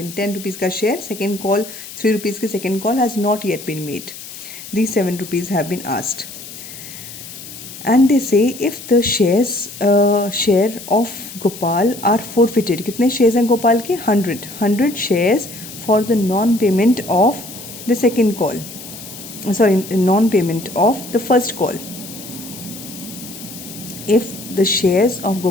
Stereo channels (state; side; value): noise; left; hiss, 13 dB below the sound